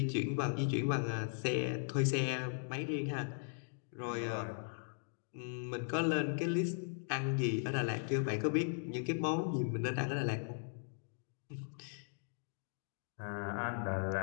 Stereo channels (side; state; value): right; silent; digital silence